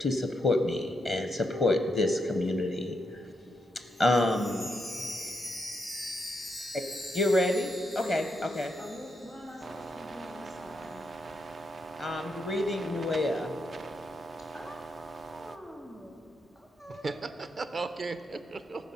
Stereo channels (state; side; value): normal; both; correlation 0.82